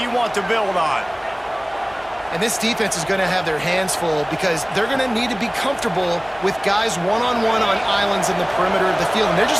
you want to build on. And this defense is going to have their hands full because they're going to need to be comfortable with guys one-on-one on islands in the perimeter of the field, and they're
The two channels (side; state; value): left; noise; hum, 28 dB below the sound